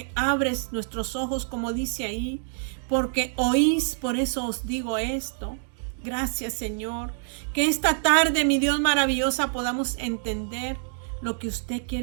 abres nuestros ojos, como dice ahí, porque oís, por eso os digo esto. Gracias, Señor, que esta tarde, mi Dios maravillosa, podamos entender lo que usted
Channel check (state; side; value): silent; left; digital silence